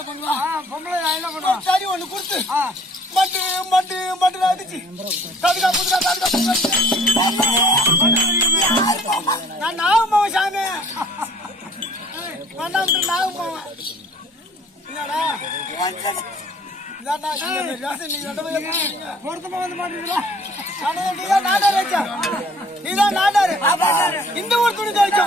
பண்ணுவான்? பொம்பளை நான் என்ன பண்ணுவேன்? சரி ஒண்ணு கொடுத்து மட்டு மட்டு மட்டு அடிச்சு தடுக்கா புதுக்கா தடுக்கா நான் நாகமாவன் சாமி நாகமாவன் என்னடா பொருத்தமா வந்து மாட்டீங்களா? இந்த ஊர் துணி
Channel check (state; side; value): normal; both; correlation 0.55